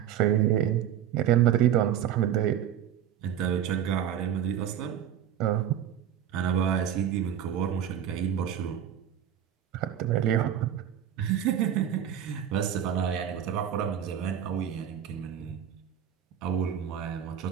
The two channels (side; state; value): left; quieter; 9.9 dB